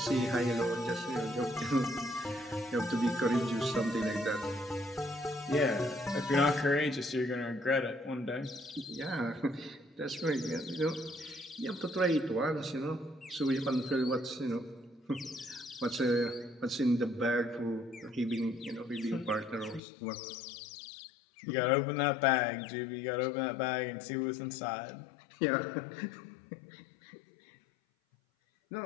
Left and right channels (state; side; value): drops out; right; at 19.8 s